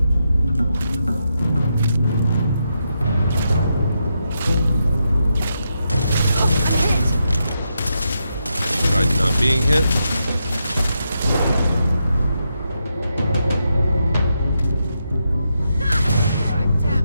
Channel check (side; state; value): both; inverted; correlation -0.84